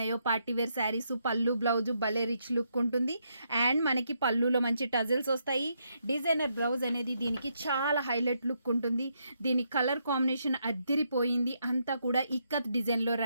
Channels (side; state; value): both; inverted; correlation -0.78